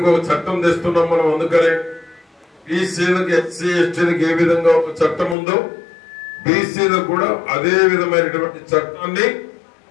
ఒక చట్టం తెస్తున్నాం మనం, అందుకనే బీసీలకు ఎస్సీ ఎస్టీలకు ఏ విధంగా ఒక చట్టం ఉందో బీసీలకు కూడా అదే విధమైనటువంటి చట్టాన్ని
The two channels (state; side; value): drops out; right; at 5.4 s